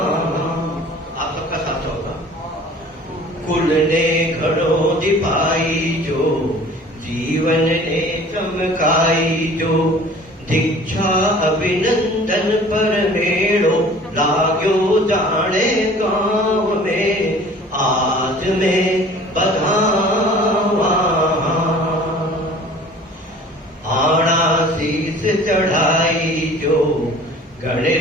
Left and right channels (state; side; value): normal; both; correlation 0.47